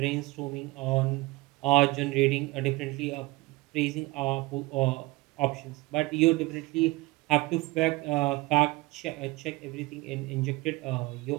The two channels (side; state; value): left; quieter; 21.4 dB